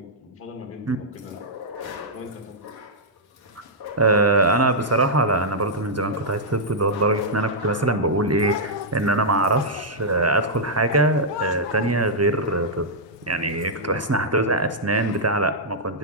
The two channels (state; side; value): normal; both; correlation -0.08